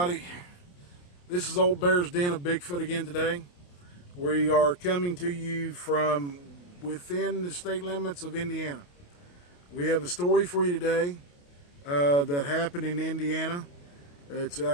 This is Old Bear's Den of Bigfoot again today. We are coming to you from within the state limits of Indiana. We have a story for you today that happened in Indiana. It's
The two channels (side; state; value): right; late; 28 ms